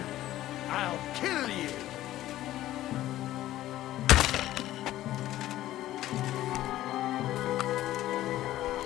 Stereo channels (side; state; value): right; quieter; 14.4 dB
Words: I'll kill you!